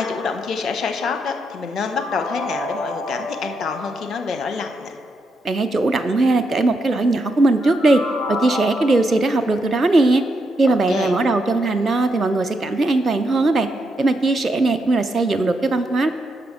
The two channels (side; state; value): both; normal; correlation 0.81